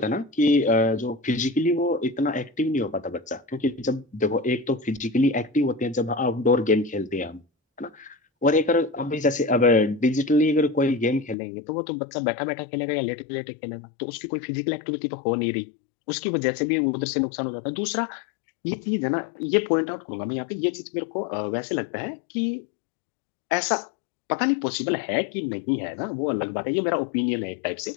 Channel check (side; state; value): right; drops out; at 11.4 s